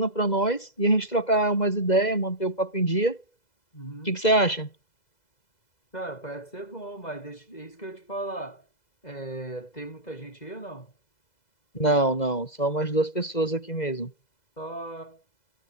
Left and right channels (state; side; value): late; right; 2.0 ms